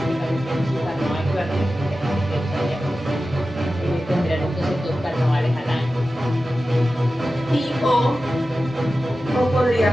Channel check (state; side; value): normal; both; correlation 0.94